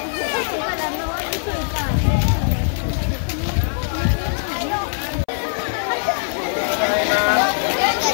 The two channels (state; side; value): silent; right; 63 dB below the other